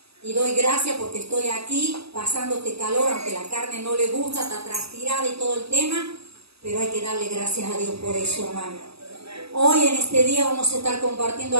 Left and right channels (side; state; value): left; late; 0.77 ms